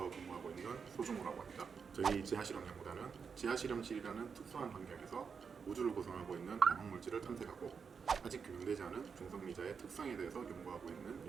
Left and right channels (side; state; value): left; quieter; 6.0 dB